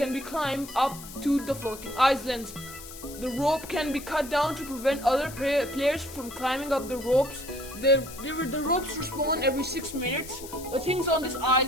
climbed up to the floating islands. The rope can be cut down to prevent other players from climbing up the ropes. The ropes respawn every 6 minutes. The things on these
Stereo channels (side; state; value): left; noise; hiss, 14 dB below the sound